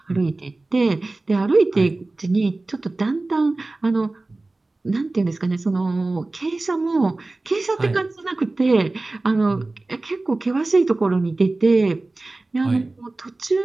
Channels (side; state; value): left; quieter; 3.1 dB